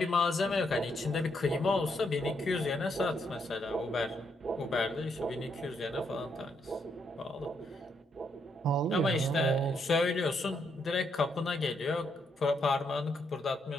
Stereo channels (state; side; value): normal; both; correlation 0.76